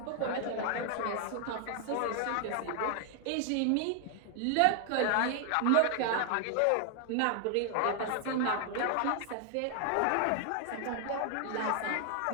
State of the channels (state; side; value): different; both; correlation 0.00